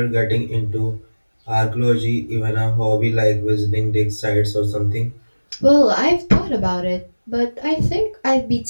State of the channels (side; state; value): both; inverted; correlation -1.00